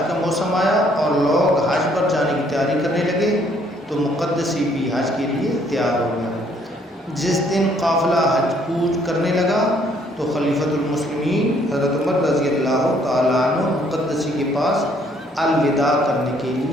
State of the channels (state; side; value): normal; both; correlation 0.65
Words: کا موسم آیا اور لوگ حج پر جانے کی تیاری کرنے لگے تو مقدسی بھی حج کے لیے تیار ہو گیا۔ جس دن قافلہ حج کوچ کرنے لگا تو خلیفۃ المسلمین حضرت عمر رضی اللہ تعالیٰ عنہ مقدسی کے پاس الوداع کرنے کے